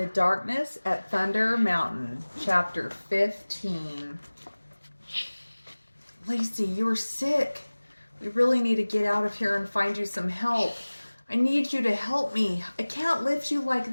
Darkness at Thunder Mountain, Chapter 15. Lacie, you are sick. We really need to get out of here and find you some help. I need you to help me. I can't lift you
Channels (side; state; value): both; inverted; correlation -1.00